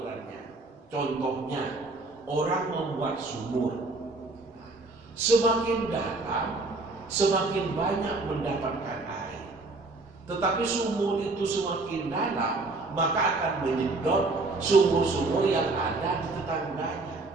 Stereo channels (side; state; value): left; quieter; 3.4 dB